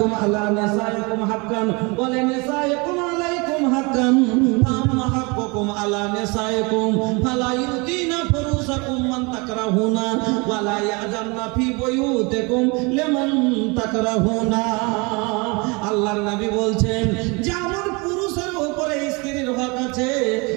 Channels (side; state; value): left; quieter; 28.4 dB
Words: আলা নিসাইকুম হাক্কান ওয়া লিনিসাইকুম আলাইকুম হাক্কান ফাম্মা হাক্কুকুম আলা নিসাইকুম ফালা ইউতিনা ফুরুসাকুম মান তাকরাহুনা ওয়া লা ইয়াজামনা ফি বুয়ুতিকুম লিমান তাকরাহুনা। আল্লাহর নবী বলছেন যেমন পুরুষের উপরে স্ত্রীর হক আছে,